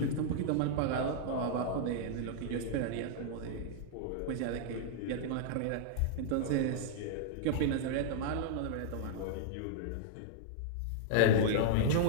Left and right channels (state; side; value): different; both; correlation -0.01